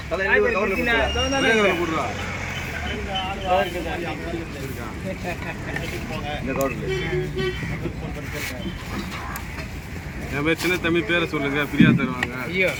என் பேர் சின்ன தம்பி பேரை சொல்லுங்க, ஃப்ரீயா தருவாங்க. ஐயோ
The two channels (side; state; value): both; identical; correlation 1.00